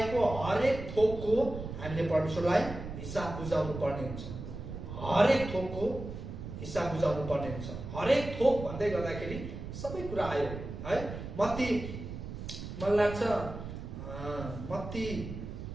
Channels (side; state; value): right; noise; rumble, 9 dB below the sound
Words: हरेक थोकको हामीले परमेश्वरलाई हिसाब बुझाउनु पर्ने हुन्छ। हरेक थोकको हिसाब बुझाउनु पर्ने हुन्छ। हरेक थोक भन्दै गर्दाखेरि सबै कुरा आयो है। मलाई लाग्छ मत्ती